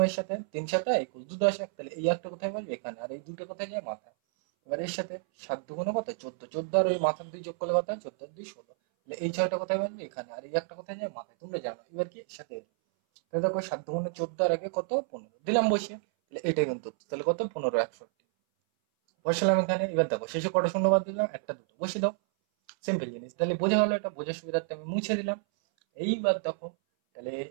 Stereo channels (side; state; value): left; silent; 58 dB below the other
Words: এর সাথে 3 7 21 2 10 1, তাহলে এই একটা কোথায় বলবে এখানে, আর এই দুটো কোথায় যায় মাথায়। এবার এর সাথে 7 দুগুণে কত 14, 14 আর ওই মাথার 2 যোগ করলে কত হয় 14 আর 2 16, তাহলে এই 6টা কোথায় বলবে এখানে, আর এই একটা কোথায় যায় মাথায়, তোমরা জানো। এবার কি এর সাথে তাহলে দেখো 7 দুগুণে 14 আর আগে কত 15 দিলাম বসিয়ে, তাহলে এটাই কিন্তু তাহলে কত 15 61 বসালাম এখানে। এবার দেখো শেষে কটা শূন্য বাদ দিলাম, একটা দুটো বসিয়ে দাও, সিম্পল জিনিস। তাহলে বোঝা হলো, এটা বোঝার সুবিধার্থে আমি মুছে দিলাম। এইবার দেখো, তাহলে